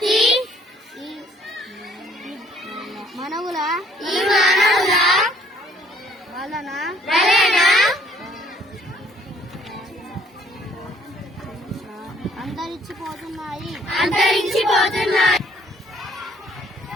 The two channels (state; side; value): normal; both; correlation 0.62